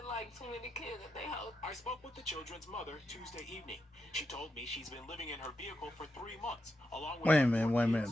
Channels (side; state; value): both; normal; correlation 0.85